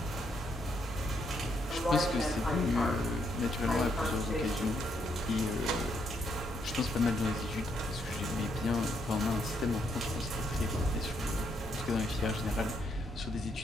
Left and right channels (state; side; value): normal; both; correlation 0.75